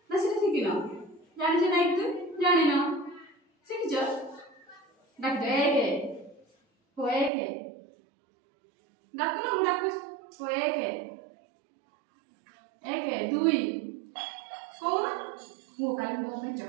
ना से शिखिन जानिछ ना एक दुई जानिन शिखिछ डाक दे हो एक डाकुन मु डाकुछ हो एक दुई कौन वो काली मो में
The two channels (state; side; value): drops out; left; at 7.3 s